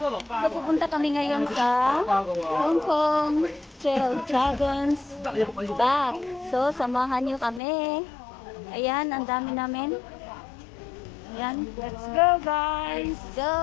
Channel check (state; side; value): drops out; right; at 7.6 s